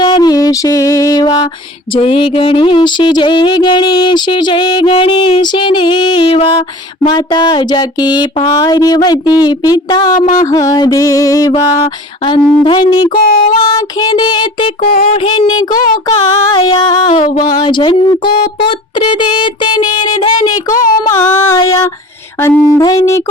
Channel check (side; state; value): both; normal; correlation 0.41